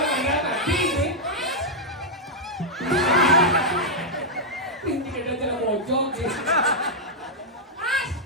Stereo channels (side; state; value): both; normal; correlation -0.05